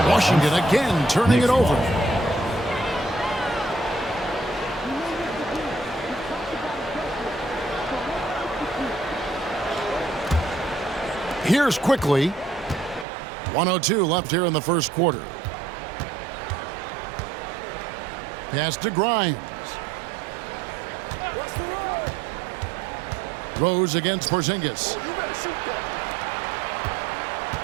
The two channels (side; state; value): left; drops out; at 13.1 s